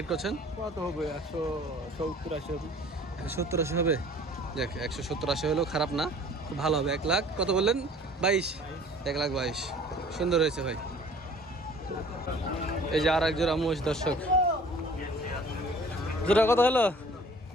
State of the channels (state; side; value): normal; both; correlation 0.50